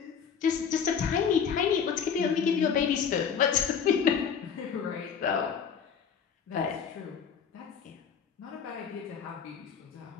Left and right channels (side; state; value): right; quieter; 7.0 dB